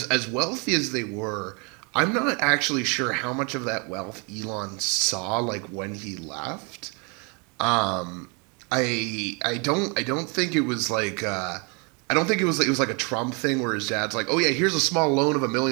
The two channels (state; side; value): quieter; left; 32.9 dB